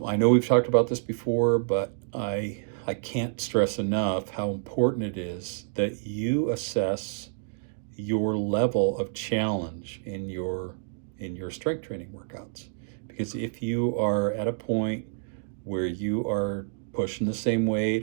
I know we've talked about this before, but I can't stress enough how important it is that you assess your level of challenge in your strength training workouts. Because if you are at a point where you are pushing the same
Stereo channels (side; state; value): left; silent; digital silence